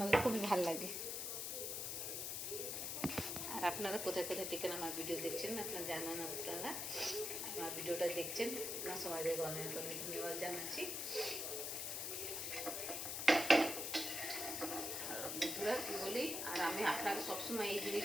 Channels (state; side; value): noise; left; hiss, 2 dB below the sound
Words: খুবই ভালো লাগে। আর আপনারা কোথায় কোথায় থেকে আমার ভিডিও দেখছেন আপনারা জানান, আপনারা আমার ভিডিওটা দেখছেন, আপনার সবাইকে অনেক অনেক ধন্যবাদ জানাচ্ছি। বন্ধুরা কী বলি, আর আমি আপনাকে সবসময় এই